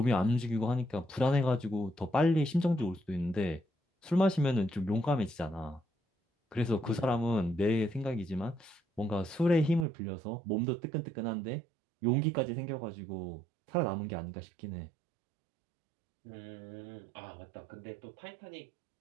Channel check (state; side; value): drops out; left; at 9.9 s